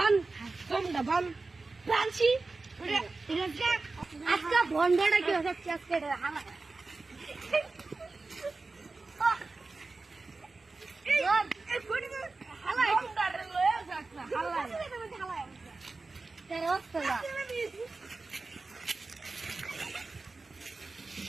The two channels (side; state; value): left; quieter; 3.7 dB